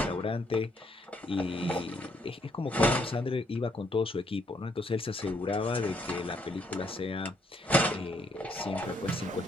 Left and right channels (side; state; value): both; normal; correlation 0.71